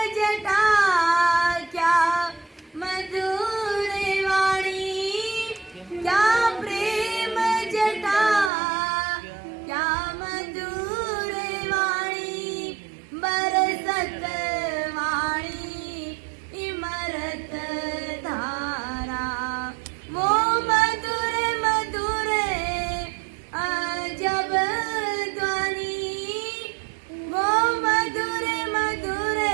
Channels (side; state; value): left; drops out; at 8.5 s